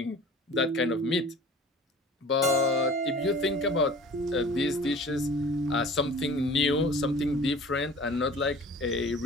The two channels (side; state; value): both; normal; correlation 0.44